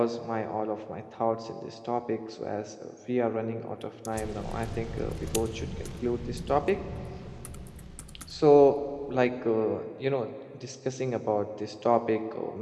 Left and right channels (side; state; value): both; identical; correlation 1.00